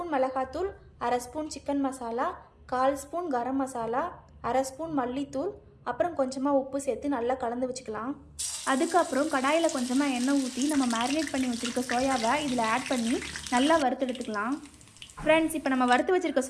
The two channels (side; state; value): both; identical; correlation 1.00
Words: மிளகாத்தூள், அரை spoon chicken masala, 1/4 spoon garam masala, அரை ஸ்பூன் மல்லித்தூள், அப்புறம் கொஞ்சமாக உப்பு சேர்த்து நல்லா கலந்து வச்சுக்கலாம். அதுக்கப்புறம் கடாயில் கொஞ்சமாக எண்ணெய் ஊற்றி நம்ம மேரினேட் பண்ணி வச்சுருக்க சோயாவை இதில் ஆட் பண்ணி நல்லா வறுத்தெடுத்துக்கலாம். ஃப்ரெண்ட்ஸ், இப்போ நம்ம வறுத்து வச்சிருக்க